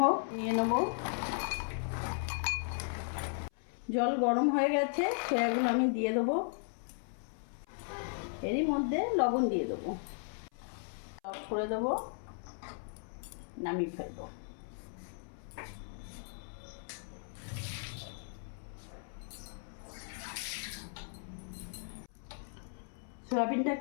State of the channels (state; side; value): silent; right; 54 dB below the other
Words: নিয়ে নেব। জল গরম হয়ে গেছে, সয়াগুলো আমি দিয়ে দেবো। এরই মধ্যে লবণ দিয়ে দেবো, অফ করে দেবো, নামিয়ে ফেলবো।